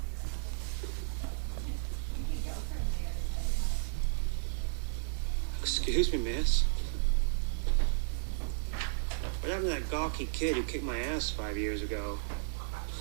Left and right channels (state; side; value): silent; left; digital silence